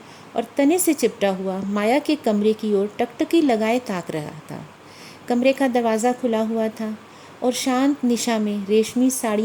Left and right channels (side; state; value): both; identical; correlation 1.00